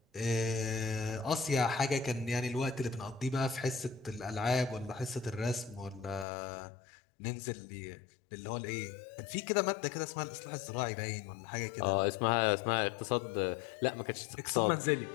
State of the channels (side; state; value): right; drops out; at 6.2 s